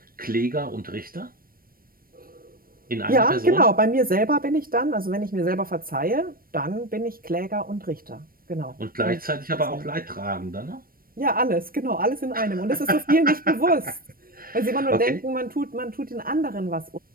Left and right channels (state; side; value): late; left; 0.42 ms